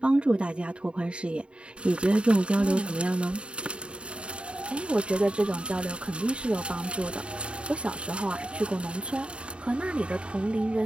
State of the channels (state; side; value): late; left; 0.055 ms